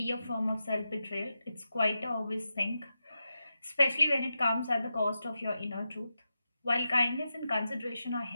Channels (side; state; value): both; inverted; correlation -0.89